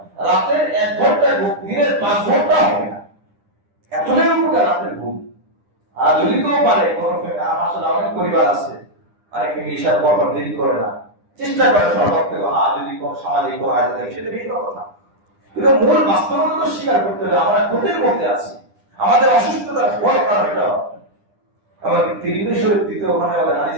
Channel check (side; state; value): left; late; 9.9 ms